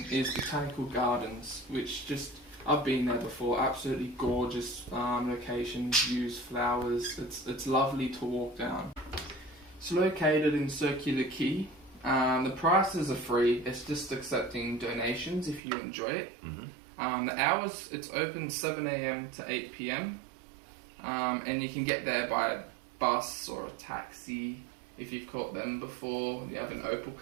is Botanical Gardens, which I've been there before. Absolutely gorgeous locations, views, flowers. It's lovely to walk down. It's located in Circular Quay. The prices are free. It's just accepting donations if you enjoy it. The hours, it's open 7 a.m. to 8 p.m. And you can get there by a bus or a taxi if you've caught them before. You have an Opal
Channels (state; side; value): drops out; left; at 15.6 s